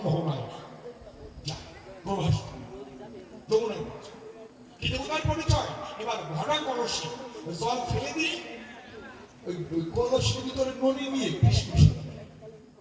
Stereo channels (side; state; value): both; identical; correlation 1.00